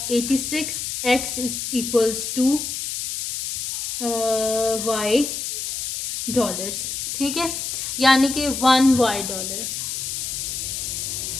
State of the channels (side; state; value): left; noise; hiss, 4 dB below the sound